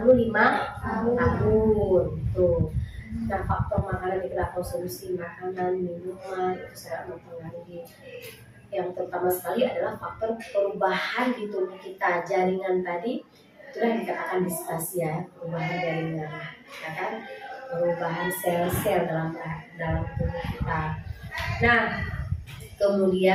tahun. Tuh. Nah, faktor makanan kita konsumsi makanan, minuman itu sangat mempengaruhi. Yang terutama sekali adalah faktor perubahan di tubuh kita. Jaringan tadi itulah dikatakan distasia, perubahan jaringan, ya kan? Perubahan sel-sel dalam tubuh kita. Nah,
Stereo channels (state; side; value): identical; both; correlation 1.00